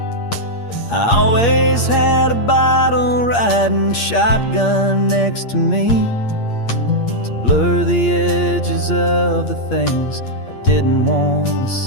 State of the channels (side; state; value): right; late; 8.6 ms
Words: I always had a bottle riding shotgun next to me to blur the edges of the things I didn't want to